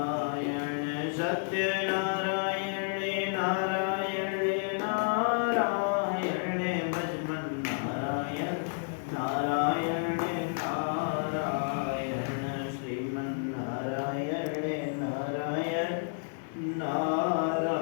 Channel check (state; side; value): silent; right; 57 dB below the other